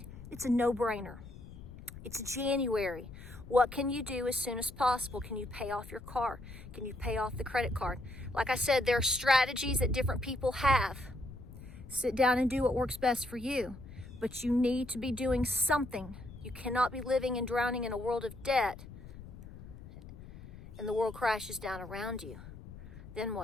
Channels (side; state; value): left; noise; rumble, 15 dB below the sound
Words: It's a no-brainer. It's January. What can you do as soon as possible? Can you pay off your car? Can you pay off the credit card? Like I said, there are strategies that different people have. Sit down and do what works best for you. But you need to be doing something. You cannot be living and drowning in a world of debt and the world crashes down around you. Then